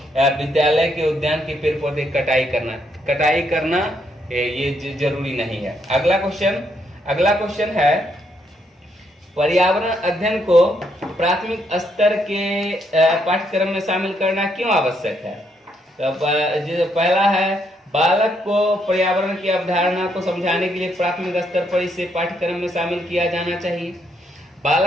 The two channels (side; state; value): both; normal; correlation 0.75